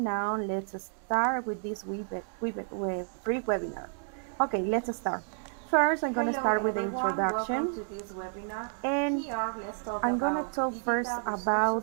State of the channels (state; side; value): silent; left; 57 dB below the other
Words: now let's start with this free webinar. Okay, let's start. First, I'm going to start with the introduction. Welcome to this webinar. And here, let's talk I'm going to talk first